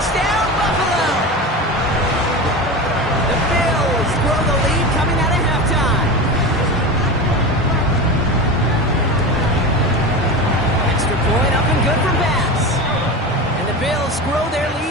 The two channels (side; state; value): both; normal; correlation 0.25